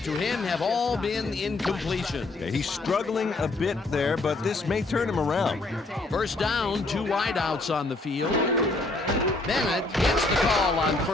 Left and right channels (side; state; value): right; quieter; 3.0 dB